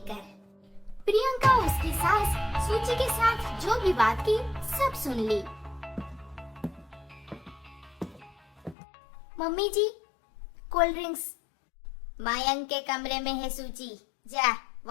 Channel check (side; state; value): right; drops out; at 8.8 s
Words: प्रियंका उसकी सास सूची के साथ जो भी बात की सब सुन ली। मम्मी जी, कोल्ड ड्रिंक्स। मयंक के कमरे में है सूची, जा